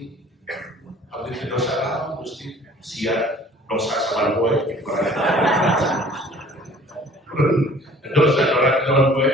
abdi dosa lah Gusti siap dosa sabar boy dosa orang gue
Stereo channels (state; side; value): normal; both; correlation 0.51